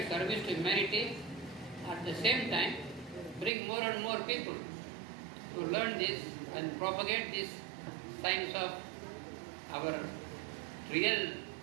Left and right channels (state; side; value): drops out; left; at 3.5 s